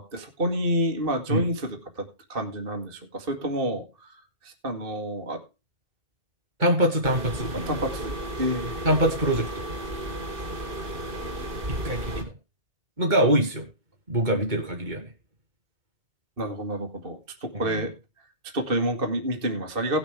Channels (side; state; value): left; late; 2.2 ms